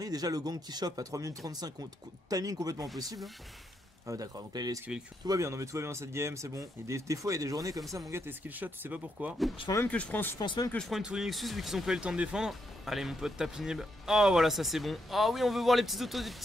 déjà le gang qui chope à 3 minutes 35, timing complètement impossible. Ah d'accord, donc là il a esquivé le cul. Tout va bien, non mais tout va bien dans cette game, c'est bon. Et des fois il y a des journées comme ça, mon gars, t'es skillshot, tu sais pas pourquoi. Je pense même que je prends une tour Nexus vu qu'ils ont pas eu le temps de défendre. Allez mon pote, tape inhib. Oh voilà, ça c'est bon. Oh oui, on veut voir les petits autos des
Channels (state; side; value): normal; both; correlation 0.79